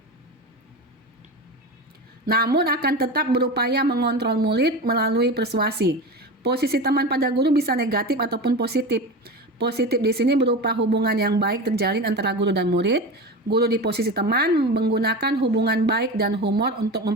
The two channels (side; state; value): both; normal; correlation 0.26